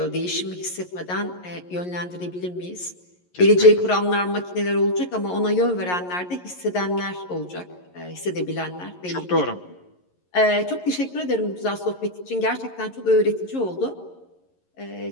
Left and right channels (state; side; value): late; right; 11 ms